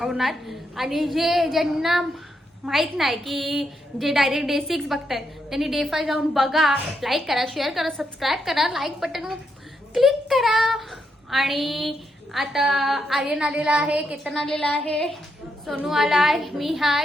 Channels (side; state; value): both; normal; correlation 0.81